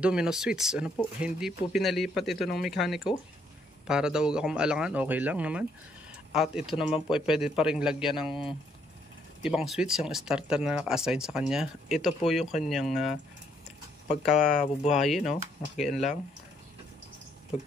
domino switch. Ano po, hindi po pinalipat ito ng mekaniko para daw ako maalangan, okay lang naman. At ito naman po ay pwede pa rin lagyan ng ibang switch, yung starter na naka-assign sa kanya. Ito po yung kanyang pagkabubuhayin, no? Nakikian lang.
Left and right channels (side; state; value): both; normal; correlation 0.70